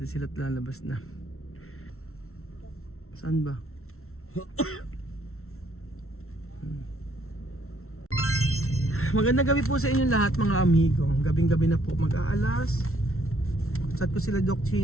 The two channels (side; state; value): right; late; 0.62 ms